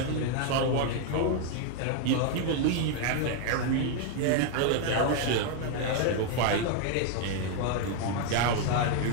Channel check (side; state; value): both; different; correlation 0.01